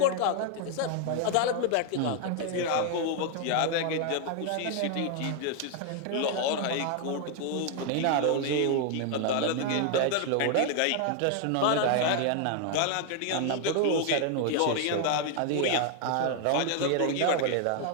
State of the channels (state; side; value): different; both; correlation 0.00